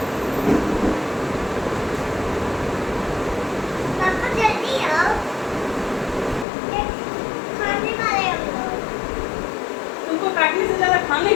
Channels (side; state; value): right; drops out; at 6.5 s